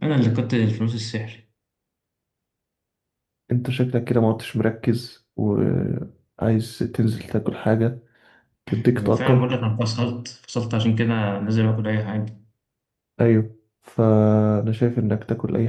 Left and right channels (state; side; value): identical; both; correlation 1.00